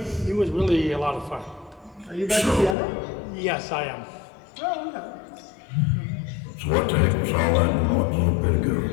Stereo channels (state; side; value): drops out; right; at 2.8 s